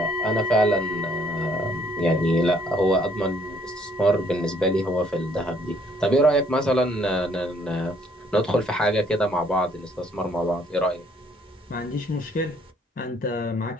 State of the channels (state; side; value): normal; both; correlation 0.64